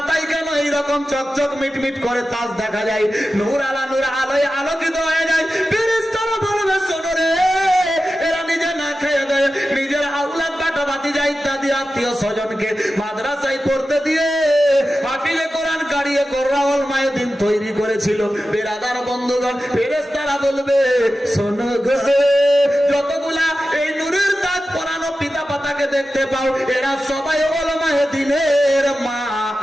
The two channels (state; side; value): normal; both; correlation 0.93